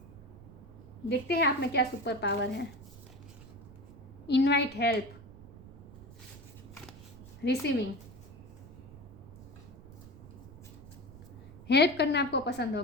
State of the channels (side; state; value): right; noise; rumble, 17 dB below the sound